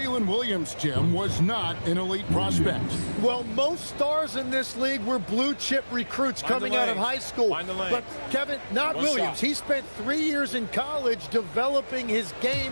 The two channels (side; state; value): both; inverted; correlation -1.00